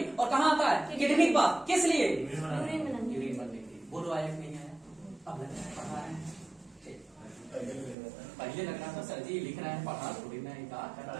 और कहाँ आता है? किडनी के पास। किस लिए? यूरिन बनने के लिए। बोलो आया नहीं आया? अब पढ़ा रहे हैं, पहले लग रहा था सर जी लिख रहे हैं, पढ़ा थोड़ी ना,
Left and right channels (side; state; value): left; drops out; at 8.0 s